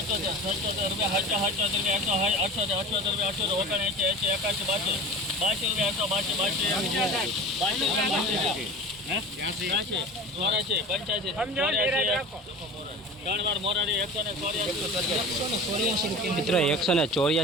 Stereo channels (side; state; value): both; normal; correlation 0.35